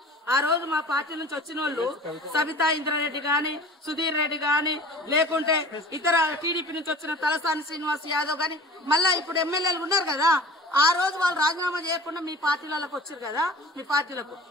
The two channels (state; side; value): normal; both; correlation 0.43